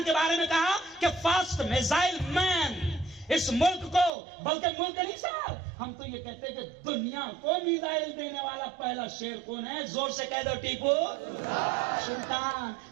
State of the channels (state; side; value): drops out; left; at 4.1 s